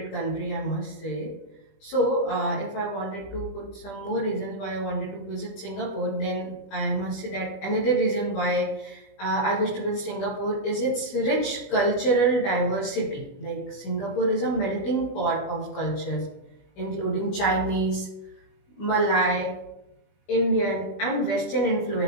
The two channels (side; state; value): right; late; 20 ms